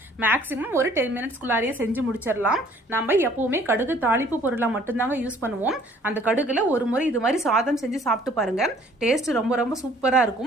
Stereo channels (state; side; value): normal; both; correlation 0.57